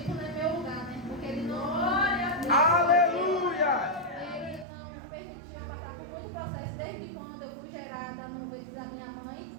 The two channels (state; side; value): drops out; left; at 4.7 s